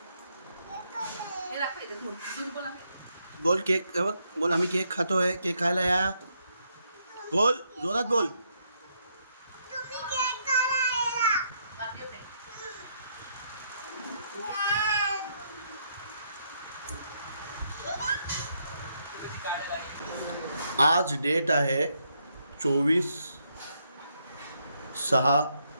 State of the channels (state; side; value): inverted; both; correlation -0.76